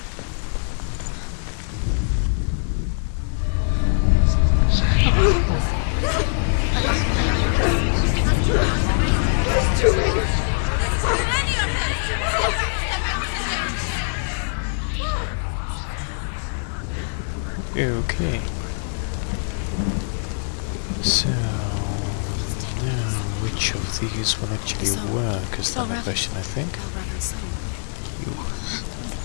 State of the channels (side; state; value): right; silent; digital silence